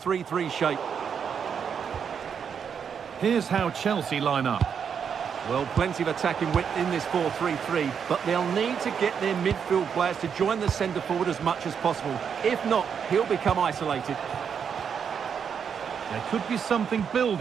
shape. Here's how Chelsea line up. Well, plenty of attacking width in this 4-3-3, but they'll need to get their midfield players to join the centre forward as much as possible. If not, he'll become isolated. There could be something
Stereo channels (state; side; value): quieter; left; 7.2 dB